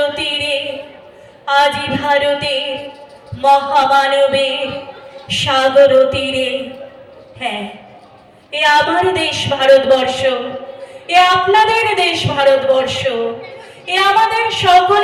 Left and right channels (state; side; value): identical; both; correlation 1.00